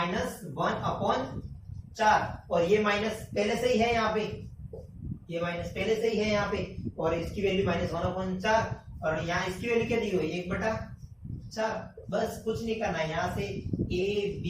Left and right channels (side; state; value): both; identical; correlation 1.00